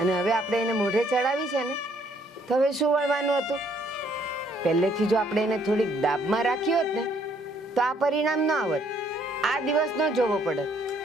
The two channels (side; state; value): both; normal; correlation 0.66